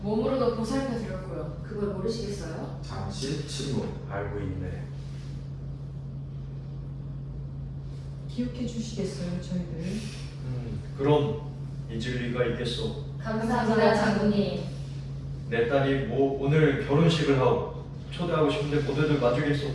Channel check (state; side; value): identical; both; correlation 1.00